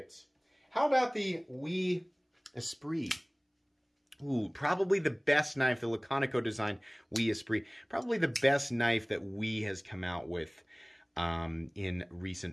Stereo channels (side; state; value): both; identical; correlation 1.00